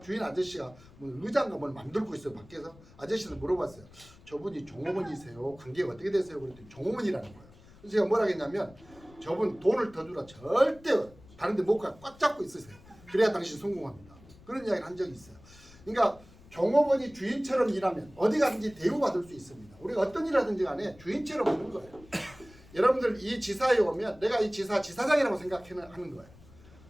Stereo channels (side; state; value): left; noise; rumble, 23 dB below the sound